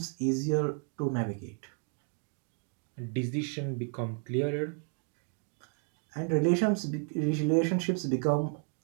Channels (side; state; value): left; quieter; 39.5 dB